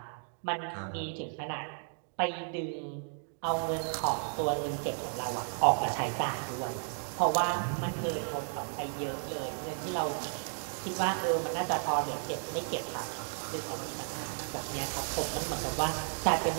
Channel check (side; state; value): left; silent; 55 dB below the other